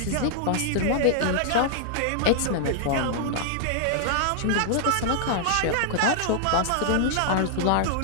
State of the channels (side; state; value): both; different; correlation -0.01